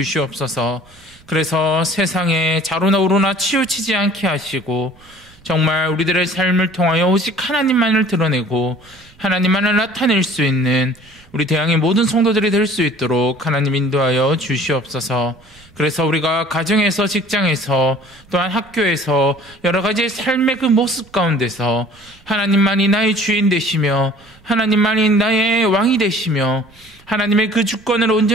그래서 세상에 자로나 우로나 치우치지 않게 하시고 정말 우리들의 삶을 통하여 오직 하나님만을 드러내고 하나님만을 나타낼 수 있는 우리 대항의 모든 성도들이 될 수 있도록 하나님 인도하여 주시옵소서. 그래서 우리가 가정에서, 직장에서, 또한 학교에서 여러 가지 삶의 그 모습 가운데서 하나님만이 나의 주인 되시며 하나님만이 나의 왕이 되시며 하나님의 그 주권을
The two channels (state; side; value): noise; right; rumble, 28 dB below the sound